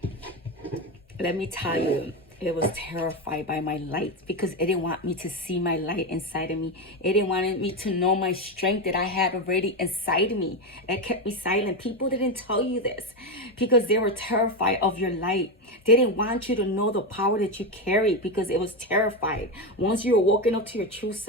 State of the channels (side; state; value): both; normal; correlation 0.13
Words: let me tell you, it was terrified by my light because it didn't want me to see my light inside of me. It didn't want me to know my strength that I had already inside of me. It kept me silent. People didn't tell you this because they were terrified of your light. They didn't want you to know the power that you carry because it was terrified. Once you were woken up to your true